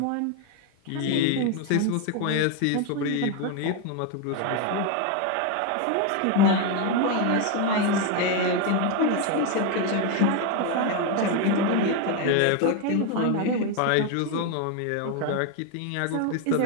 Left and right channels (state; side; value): different; both; correlation 0.01